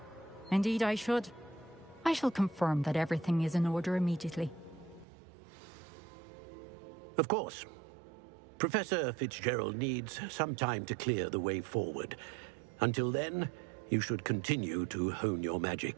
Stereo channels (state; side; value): drops out; left; at 5.1 s